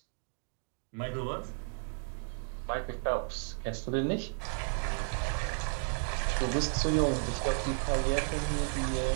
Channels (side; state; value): left; silent; 56 dB below the other